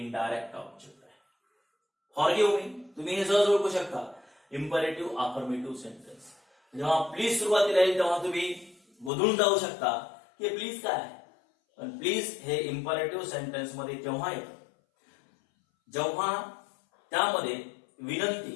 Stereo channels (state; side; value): drops out; right; at 9.1 s